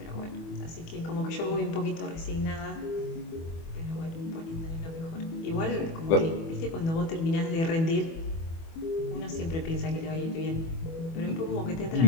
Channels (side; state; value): right; late; 24 ms